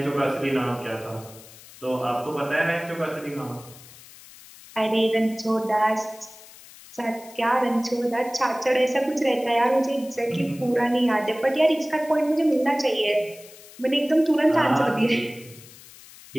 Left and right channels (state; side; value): noise; left; hiss, 20 dB below the sound